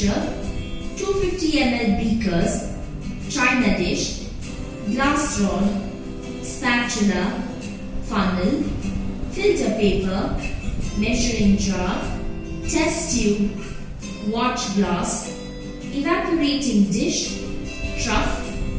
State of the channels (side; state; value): both; identical; correlation 1.00